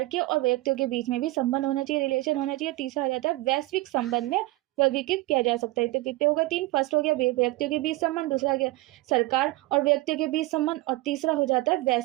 के और व्यक्तियों के बीच में भी संबंध होना चाहिए, रिलेशन होना चाहिए। तीसरा आ जाता है वैश्विक संबंध में वर्गीकृत किया जा सकता है। तो कितने होगा, 3। फर्स्ट हो गया व्यक्तियों के बीच संबंध, दूसरा गया सरकार और व्यक्तियों के बीच संबंध और तीसरा हो जाता है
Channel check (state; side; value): quieter; left; 19.0 dB